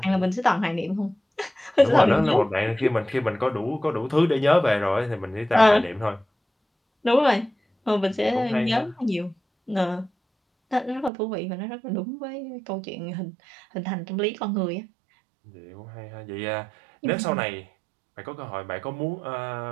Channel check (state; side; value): drops out; left; at 11.1 s